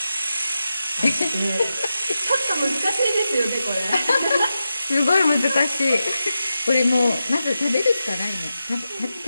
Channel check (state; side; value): inverted; both; correlation -0.90